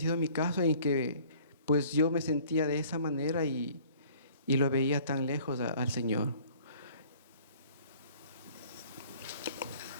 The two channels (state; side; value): inverted; both; correlation -0.53